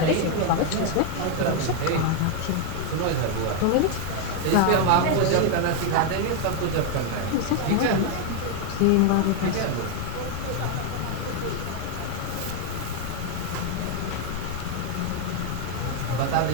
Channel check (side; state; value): both; different; correlation 0.01